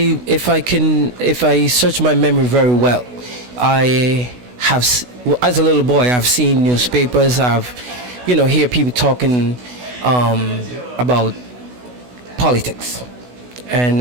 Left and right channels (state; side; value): late; left; 16 ms